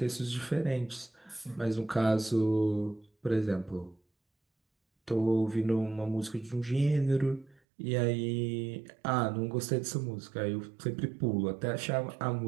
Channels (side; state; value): left; drops out; at 7.6 s